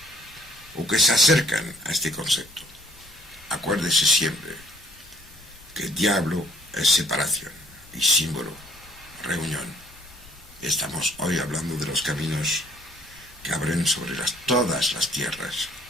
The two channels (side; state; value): left; noise; rumble, 25 dB below the sound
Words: o que se acercan a este concepto, acuérdese siempre que diablo es separación y símbolo, reunión. Estamos hoy hablando de los caminos que abren sobre todas las tierras.